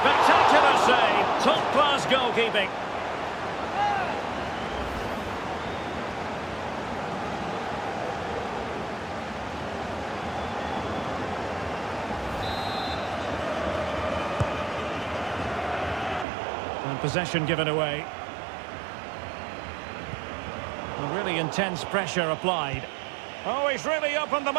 save. Top-class goalkeeping. And possession given away. And really intense pressure applied. Oh, he's really opened them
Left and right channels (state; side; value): drops out; left; at 16.2 s